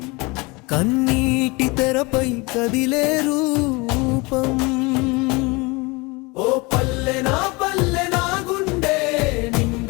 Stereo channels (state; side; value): quieter; right; 26.0 dB